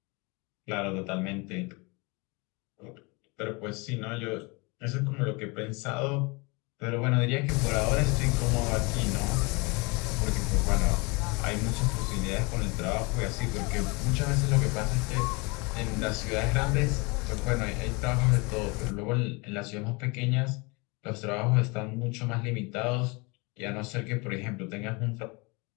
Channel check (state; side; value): quieter; right; 28.3 dB